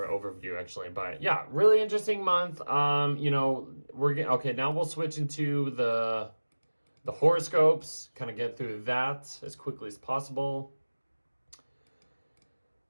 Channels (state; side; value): inverted; both; correlation -1.00